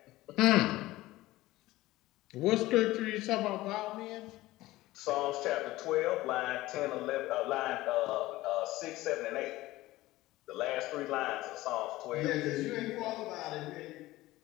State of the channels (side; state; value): right; quieter; 17.6 dB